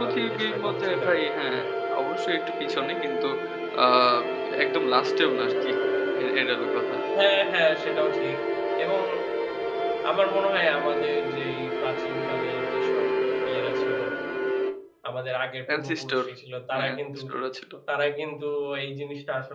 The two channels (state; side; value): identical; both; correlation 1.00